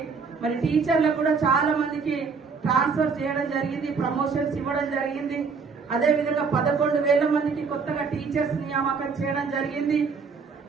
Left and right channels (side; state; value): left; quieter; 5.2 dB